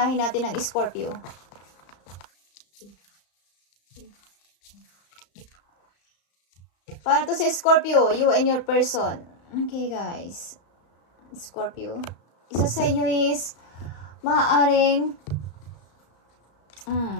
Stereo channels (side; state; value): right; late; 34 ms